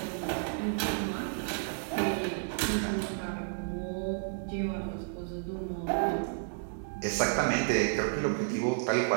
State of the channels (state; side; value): silent; left; digital silence